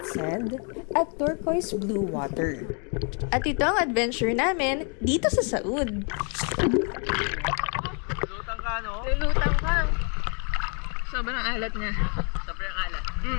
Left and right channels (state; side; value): quieter; right; 38.3 dB